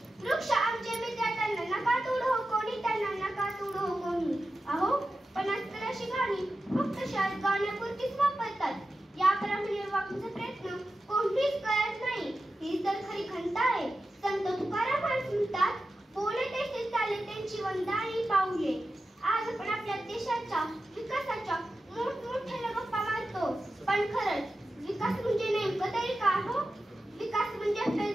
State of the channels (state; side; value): normal; both; correlation 0.92